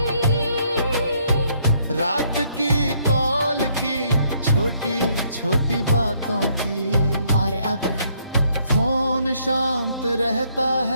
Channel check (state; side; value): inverted; both; correlation -0.69